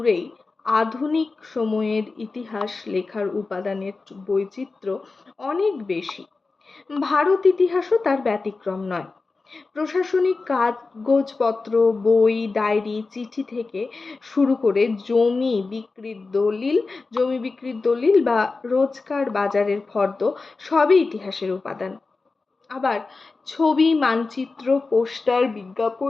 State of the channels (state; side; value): quieter; right; 3.9 dB